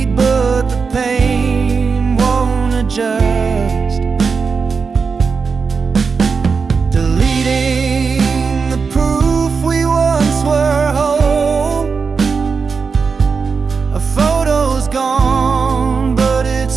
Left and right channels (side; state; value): left; quieter; 5.2 dB